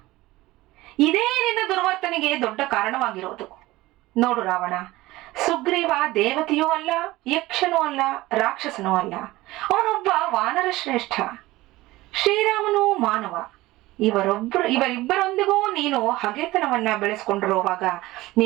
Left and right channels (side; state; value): left; quieter; 18.5 dB